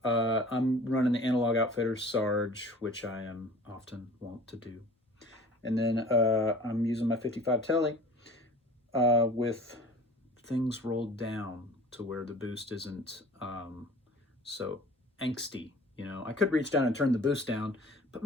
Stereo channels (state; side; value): normal; both; correlation 0.45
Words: I'm running the Analog Outfitters Sarge, which I am often wont to do. And then I'm using my 55 Tele with things rolled down to where the boost isn't so angsty. You know, I could reach down and turn the boost down, but